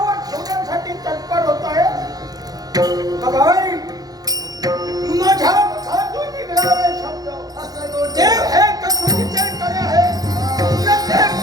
ठेवण्यासाठी तत्पर होत आहे. बघाय माझ्या मुखातून निघणारे शब्द देव हे कसोटीचे करे आहे. प्रत्येक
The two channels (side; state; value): left; late; 0.19 ms